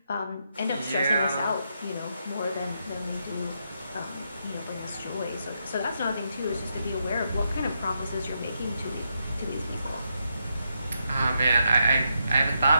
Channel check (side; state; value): both; inverted; correlation -0.81